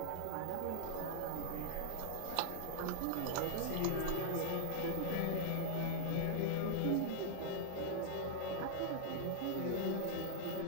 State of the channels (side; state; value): both; different; correlation -0.01